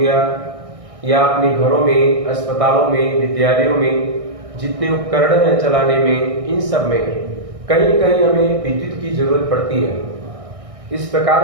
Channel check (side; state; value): left; late; 1.6 ms